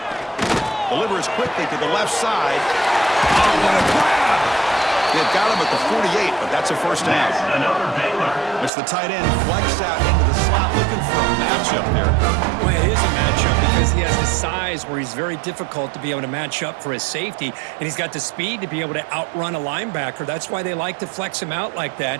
Delivers quickly to the left side. Oh, what a grab! They've got him at the 48, but that's a first down. Another Baylor. It's the tight end flex out into the slot looking for a matchup there. Well, it is a matchup because he has the size where he's very difficult to be able to match up for his safety, and he's got the speed to be able to outrun a linebacker. That's why they like to flex him out like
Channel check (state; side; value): drops out; left; at 8.7 s